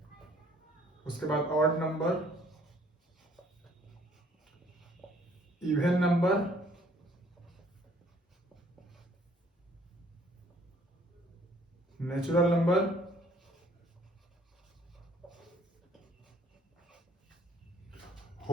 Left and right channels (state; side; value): normal; both; correlation 0.60